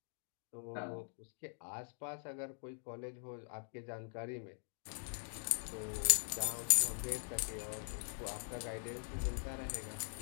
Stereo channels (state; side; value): silent; right; digital silence